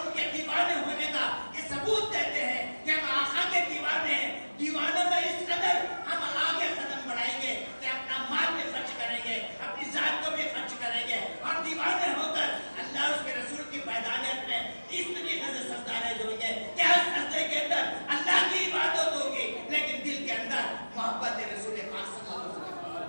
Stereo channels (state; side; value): inverted; both; correlation -1.00